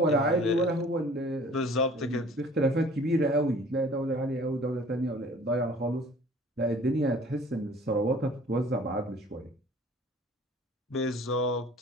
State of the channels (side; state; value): both; normal; correlation 0.50